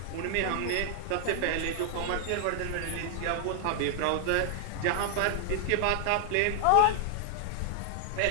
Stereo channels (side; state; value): both; different; correlation 0.00